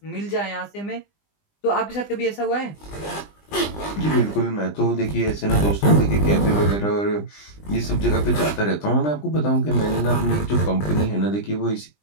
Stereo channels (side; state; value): right; late; 20 ms